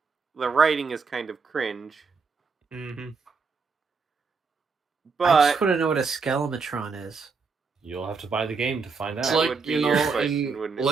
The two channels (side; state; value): left; quieter; 4.9 dB